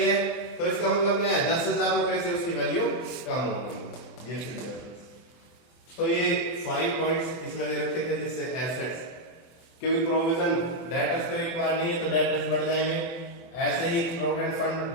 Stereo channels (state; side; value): late; right; 24 ms